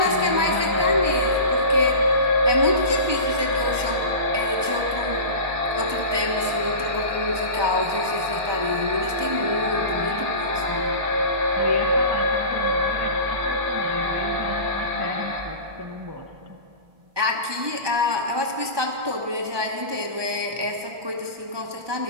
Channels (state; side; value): late; left; 1.2 ms